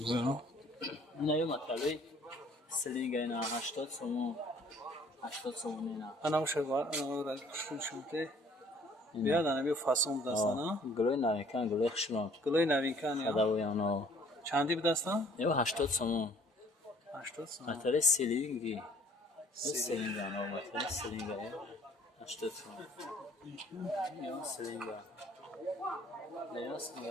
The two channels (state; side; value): normal; both; correlation 0.56